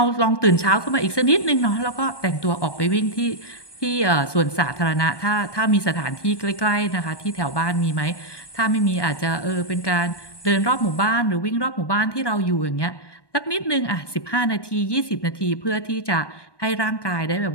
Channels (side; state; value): right; late; 1.2 ms